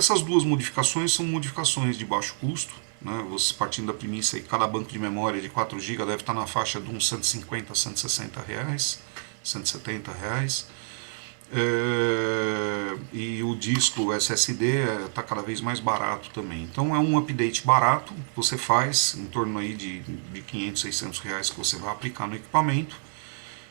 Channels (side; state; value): left; silent; digital silence